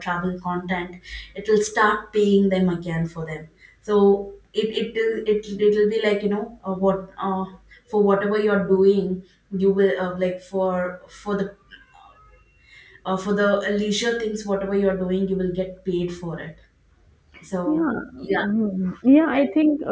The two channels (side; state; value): both; identical; correlation 1.00